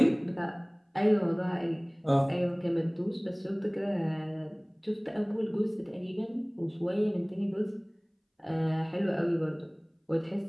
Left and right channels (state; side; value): identical; both; correlation 1.00